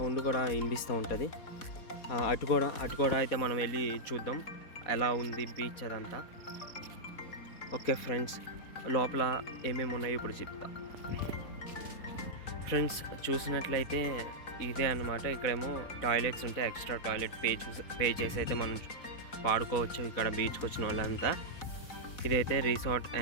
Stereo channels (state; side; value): late; right; 4.1 ms